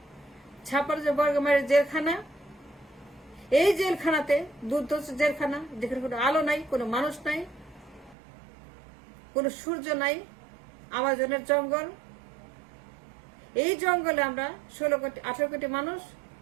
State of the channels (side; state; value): left; drops out; at 8.2 s